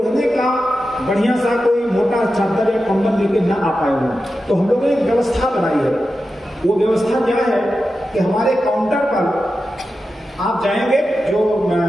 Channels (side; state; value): both; normal; correlation 0.91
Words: का बढ़िया सा कोई मोटा चादर या कंबल लेके ना आ पाए हो। तो हम लोगों ने एक व्यवस्था बनाई है। वो व्यवस्था क्या है कि हमारे काउंटर पर आप जाएंगे, जो